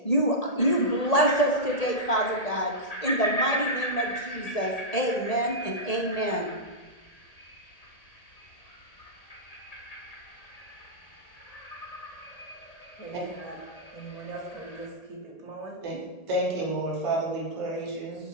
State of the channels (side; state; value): right; late; 1.8 ms